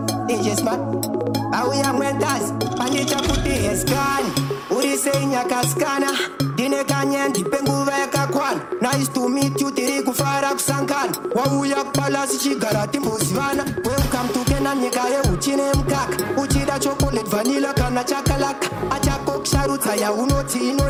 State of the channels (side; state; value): both; identical; correlation 1.00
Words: DJ Smart. Awi yang mentas. Pandicha puti eskan. Uri seinya kaskana. Dine kanyen dipenguva yakakwana. Nice to meet you tiri kufara kusankan. Wauya kupalasi chigara timbosivana. Welcome to Kena nyika ye uchine mkaka. Uchida chocolate vanilla kana chakalaka. Achako kusharutsa ya unoti